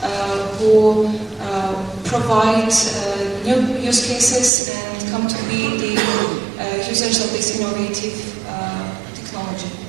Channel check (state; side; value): drops out; left; at 4.5 s